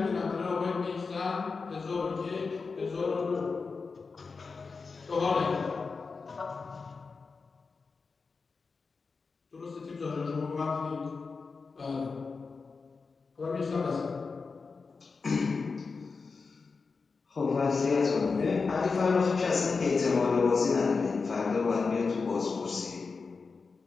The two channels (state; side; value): quieter; right; 4.6 dB